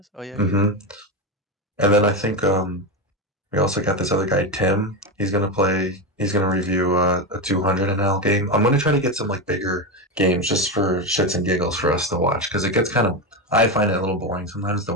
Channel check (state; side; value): normal; both; correlation 0.14